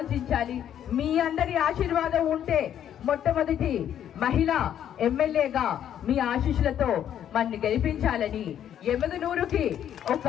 మీ అందరి ఆశీర్వాదం ఉంటే మొట్టమొదటి మహిళా ఎమ్మెల్యేగా మీ ఆశీస్సులతో మన్ని గెలిపించాలని ఎమగనూరుకి ఒక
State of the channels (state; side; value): quieter; right; 10.1 dB